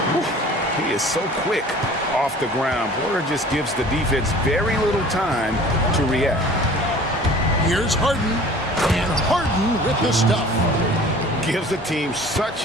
He is so quick off the ground. Porter just gives the defense very little time to react. Here's Harden, and Harden with the stuff. Gives the team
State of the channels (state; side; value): normal; both; correlation 0.46